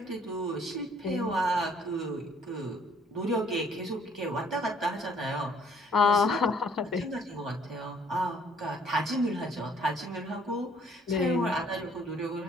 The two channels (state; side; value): normal; both; correlation 0.61